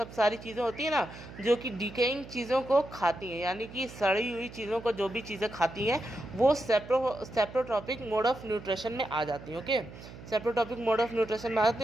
सारी चीज़ें होती हैं ना, जो कि डिकेइंग चीज़ों को खाती हैं, यानी कि सड़ी हुई चीज़ों को जो भी चीज़ें खाती हैं, वो सेप्रोट्रॉपिक मोड ऑफ न्यूट्रिशन में आ जाती हैं। Okay, saprotrophic mode of nutrition में आ जाते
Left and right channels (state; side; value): noise; right; hum, 15 dB below the sound